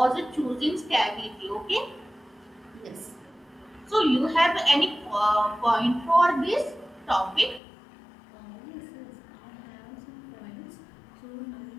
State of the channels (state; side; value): drops out; right; at 7.6 s